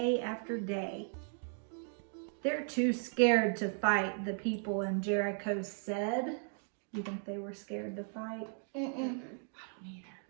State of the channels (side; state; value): left; silent; 54 dB below the other